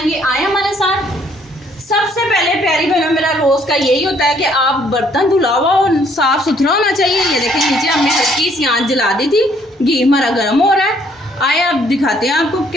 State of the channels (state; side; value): normal; both; correlation 0.65